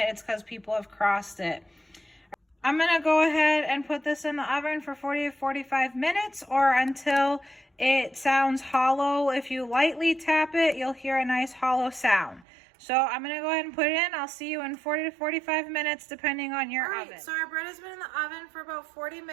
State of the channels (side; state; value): left; drops out; at 12.5 s